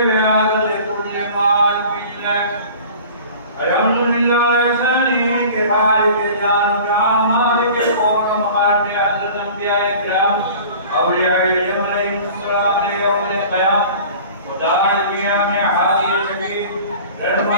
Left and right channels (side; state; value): both; inverted; correlation -0.43